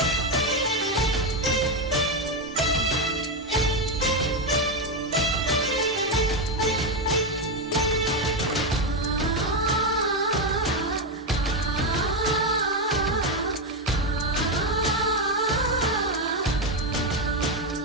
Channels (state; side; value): normal; both; correlation 0.08